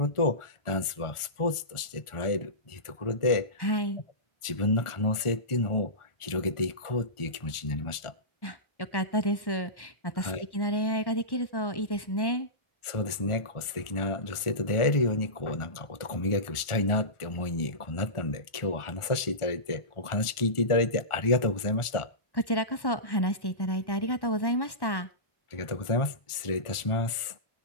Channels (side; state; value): right; late; 1.4 ms